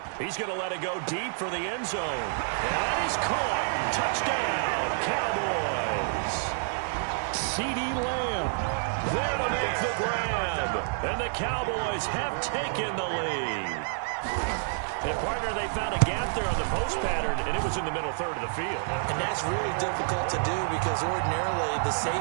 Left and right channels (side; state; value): left; silent; digital silence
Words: He's going to let it go deep for the end zone. And that is caught. Touchdown, Cowboys. CeeDee Lamb there to make the grab. And the Cowboys have taken the lead. And, partner, they found a gap there on the post pattern, and it was in the middle third of the field. And that's really difficult to do because ordinarily the